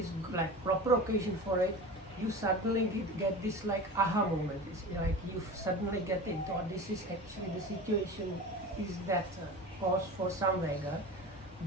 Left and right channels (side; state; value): both; normal; correlation 0.32